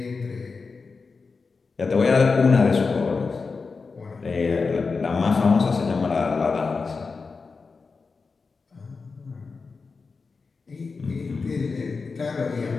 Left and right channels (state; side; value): quieter; right; 4.6 dB